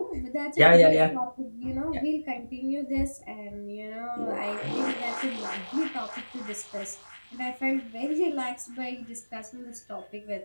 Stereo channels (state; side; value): inverted; both; correlation -1.00